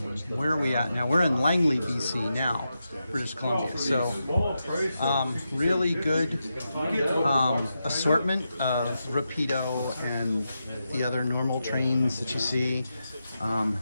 where are we at now? We're in Langley, BC now, British Columbia. So really good assortment of Rapido and the other normal trains that you see.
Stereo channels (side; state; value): both; inverted; correlation -0.88